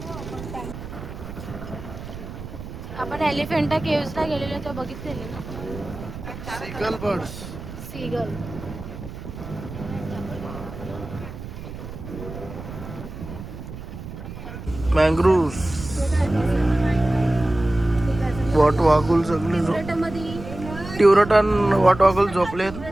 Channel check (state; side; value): noise; right; rumble, 11 dB below the sound